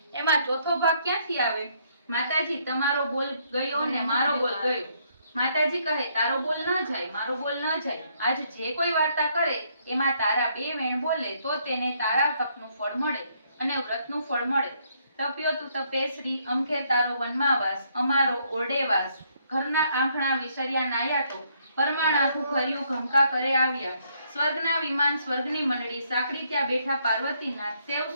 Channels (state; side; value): inverted; both; correlation -0.70